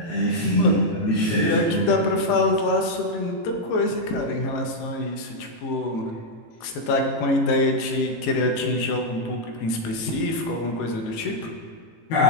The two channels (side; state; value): right; late; 18 ms